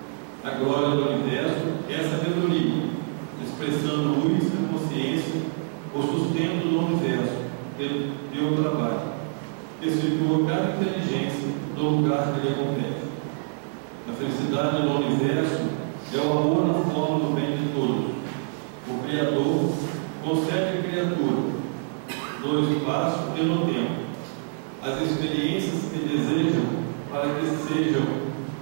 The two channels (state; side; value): silent; left; 61 dB below the other